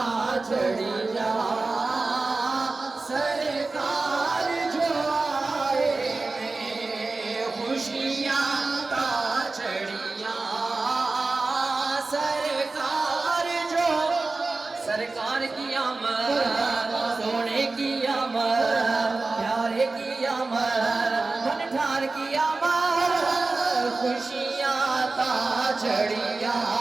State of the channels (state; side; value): quieter; left; 3.6 dB